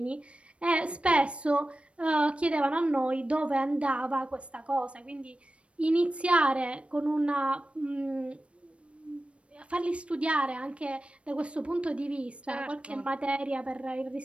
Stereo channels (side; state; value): left; late; 0.061 ms